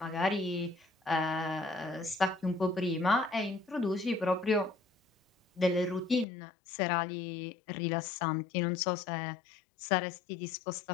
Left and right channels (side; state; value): right; drops out; at 6.2 s